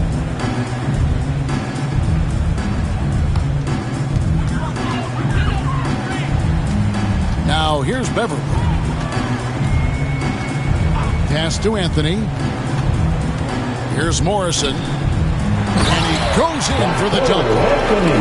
Now here's Beverly. Pass to Anthony. Here's Morrison. And he goes in for the dunk.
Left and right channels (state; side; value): identical; both; correlation 1.00